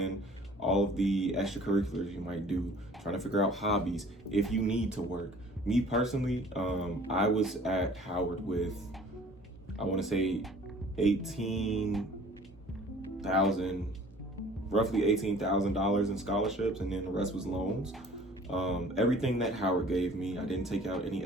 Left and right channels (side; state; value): both; normal; correlation 0.50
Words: all of the extracurriculars you might do, trying to figure out hobbies if you need to work. Me personally, I was at Howard with, I want to say, roughly $18,000 in scholarships, and then the rest was loans. Everything that Howard gave me, I didn't take out any